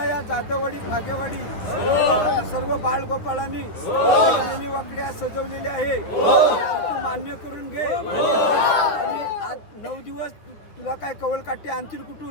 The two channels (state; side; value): late; right; 9.5 ms